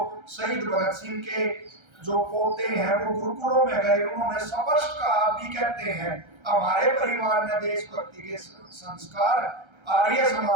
शहीद भगत सिंह के जो पोते हैं वो गुरुकुलों में गए, उन्होंने स्पष्ट कहा, भी कहते हैं हमारे परिवार ने देशभक्ति के संस्कार आर्य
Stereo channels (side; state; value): left; late; 1.3 ms